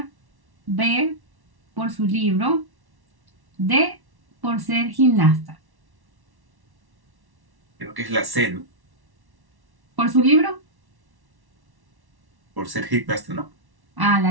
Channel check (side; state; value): left; late; 1.1 ms